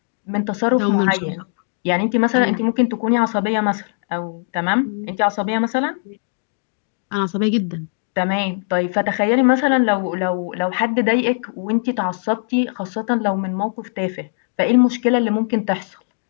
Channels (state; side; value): silent; right; digital silence